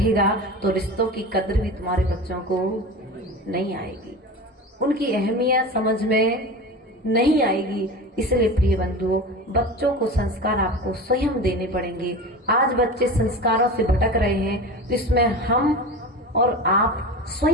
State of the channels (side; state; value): both; normal; correlation 0.30